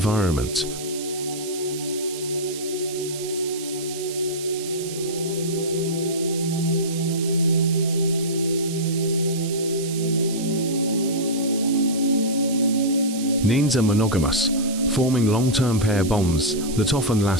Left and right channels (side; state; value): right; noise; hiss, 11 dB below the sound